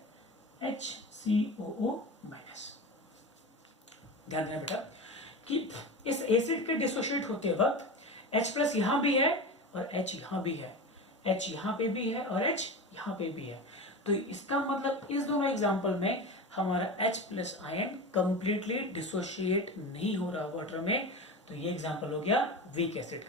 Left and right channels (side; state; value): both; normal; correlation 0.27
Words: HCOO माइनस। ध्यान देना बेटा कि इस एसिड के डिसोशिएट होते वक्त H प्लस यहां भी है और H यहां भी है, H यहां पे भी है और H यहां पे भी है। तो इसका मतलब इस दोनों एग्जांपल में हमारा H plus ion completely dissociate नहीं हो रहा वाटर में। तो ये एग्जांपल हो गया वीक एसिड